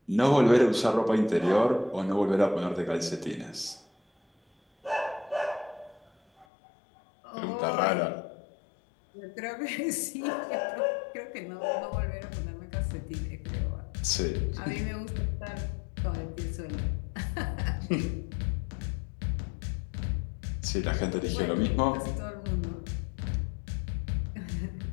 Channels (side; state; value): right; drops out; at 6.5 s